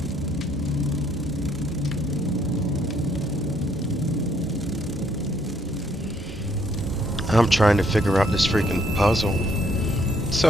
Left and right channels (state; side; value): normal; both; correlation 0.68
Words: I'm trying to figure out this freaking puzzle.